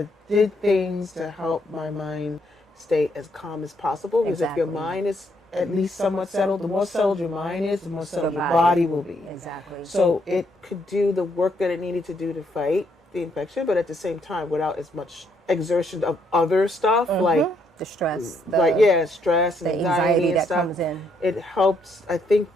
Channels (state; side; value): normal; both; correlation 0.73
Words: did things to help my mind stay as calm as possible. Because if your Exactly. mind is at least somewhat settled, the more settled your mind is, the more settled your body. body will be. Exactly. So it could do the work that it needed to do to fight the infection, but at the same time, without as much exertion of other stuff, like the stress, stress and the anxiety and that stuff. comes in. It helps. I think